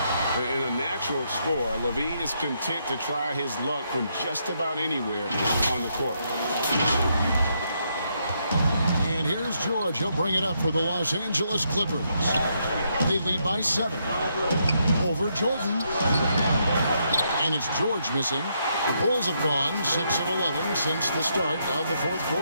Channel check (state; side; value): inverted; both; correlation -0.77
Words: And a natural scorer, Levine is content to try his luck from just about anywhere on the court. And here's George. He'll bring it up for the Los Angeles Clippers. They lead by 7. Over Jordan. And it's George missing. The Bulls have gone 6 of 11 since the start of the fourth